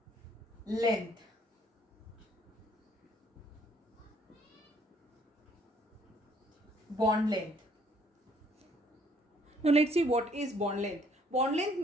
length. Bond length. Now let's see what is bond length. Bond length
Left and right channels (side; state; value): both; normal; correlation 0.63